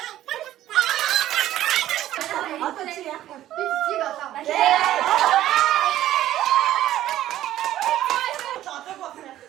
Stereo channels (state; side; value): quieter; left; 13.3 dB